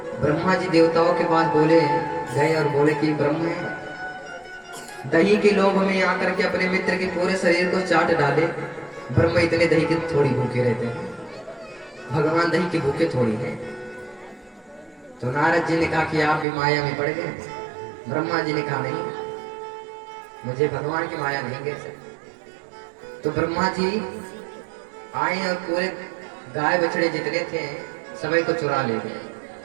ब्रह्मा जी देवताओं के पास बोले गए और बोले कि ब्रह्म है, दही के लोभ में आकर के अपने मित्र के पूरे शरीर को चाट डाले। ब्रह्म इतने दही के थोड़ी भूखे रहते हैं, भगवान दही के भूखे थोड़ी है। तो नारद जी ने कहा कि आप भी माया में पड़ गए। ब्रह्मा जी ने कहा नहीं, मुझे भगवान की माया नहीं गिर सकती। तो ब्रह्मा जी आए और पूरे गाय बछड़े जितने थे सभी को चुरा ले गए।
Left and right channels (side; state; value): left; drops out; at 16.4 s